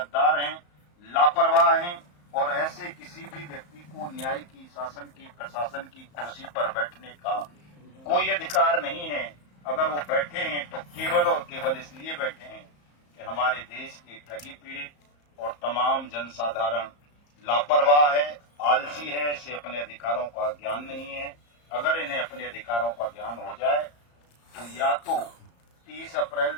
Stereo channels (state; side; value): late; right; 34 ms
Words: हैं, लापरवाह हैं, और ऐसे किसी भी व्यक्ति को न्याय की, शासन की, प्रशासन की कुर्सी पर बैठने का कोई अधिकार नहीं है। अगर वो बैठे हैं तो केवल और केवल इसलिए बैठे हैं कि हमारे देश के ठगी पीड़ित और तमाम जनसाधारण लापरवाह है, आलसी है, इसे अपने अधिकारों का ज्ञान नहीं है। अगर इन्हें अपने अधिकारों का ज्ञान हो जाए तो या तो 30 अप्रैल